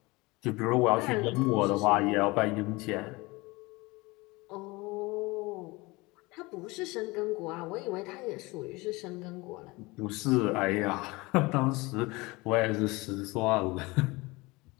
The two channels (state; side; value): quieter; right; 23.5 dB